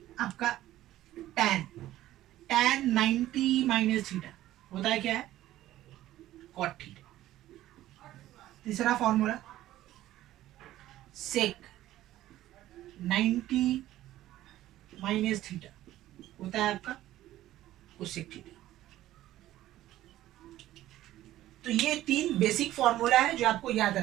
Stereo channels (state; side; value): quieter; left; 14.4 dB